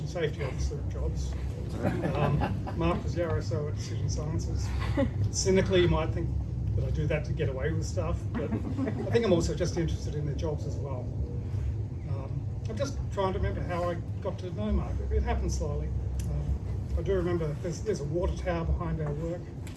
safety officer jobs. Mark was the RSO at Decision Sciences. Cynically, you might think that I do that to get away with stuff, but I think I'm also just interested in their jobs as well. I'm just trying to remember how I got to know Mark. It happened slowly. I do remember there's a water tower behind our work.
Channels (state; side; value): identical; both; correlation 1.00